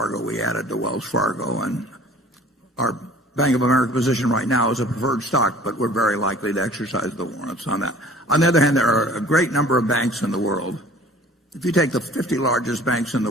We added to Wells Fargo, and our Bank of America position right now is a preferred stock, but we're very likely to exercise the warrants on that. On the other hand, there are a great number of banks in the world. If you take the 50 largest banks in the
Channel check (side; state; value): both; normal; correlation 0.49